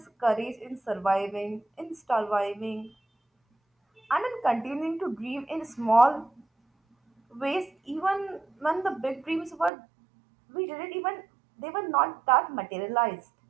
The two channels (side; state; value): left; drops out; at 9.7 s